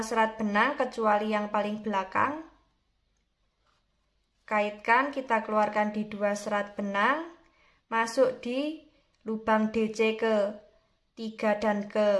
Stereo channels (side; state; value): both; identical; correlation 1.00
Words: serat benang kecuali yang paling belakang. Kaitkan, kita keluarkan di 2 serat benang, masuk di lubang DC ke 3 dan